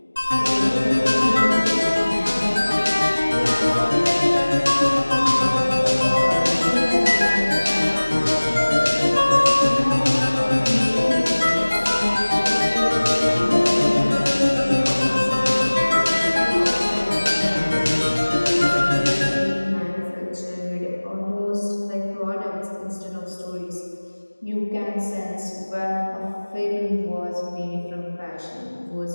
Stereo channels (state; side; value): inverted; both; correlation -1.00